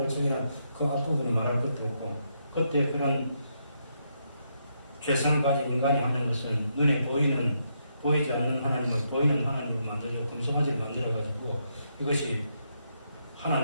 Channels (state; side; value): inverted; both; correlation -0.79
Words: 정해라 그 앞부분은 말할 것도 없고 그때 그런 죄성을 가진 인간이 하는 것은 눈에 보이지 않는 하나님을 보이는 하나님으로 만들고 금송아지를 만들어가지고 이것이